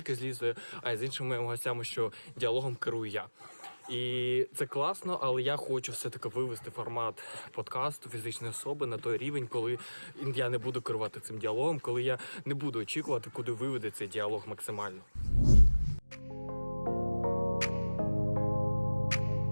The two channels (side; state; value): both; inverted; correlation -1.00